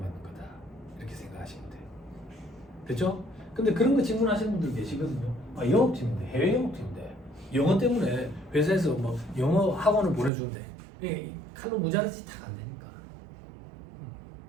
거다. 이렇게 생각하시면 돼요. 됐죠? 근데 그런 거 질문하시는 분들 계시거든요. 아, 영업팀인데, 해외 영업팀인데 영어 때문에 회사에서 뭐 영어 학원을 보내주는데 이게 칼로 무자르지 다 안 되니까.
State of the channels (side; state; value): left; drops out; at 10.3 s